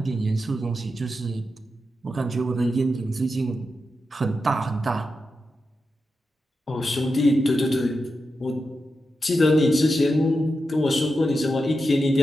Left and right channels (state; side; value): normal; both; correlation 0.89